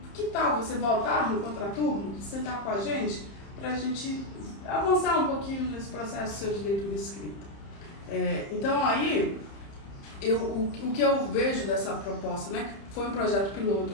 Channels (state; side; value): late; right; 30 ms